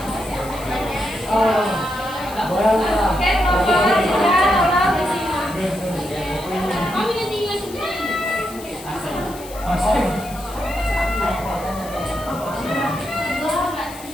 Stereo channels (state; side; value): noise; left; hiss, 17 dB below the sound